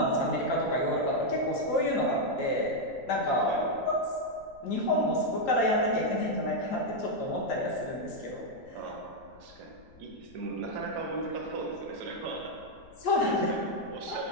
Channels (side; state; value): left; noise; rumble, 25 dB below the sound